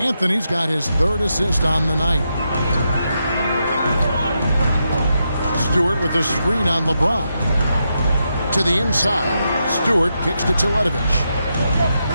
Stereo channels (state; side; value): inverted; both; correlation -0.84